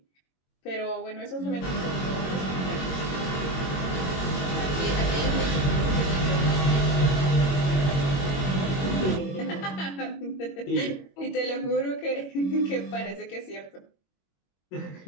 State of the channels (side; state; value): right; late; 22 ms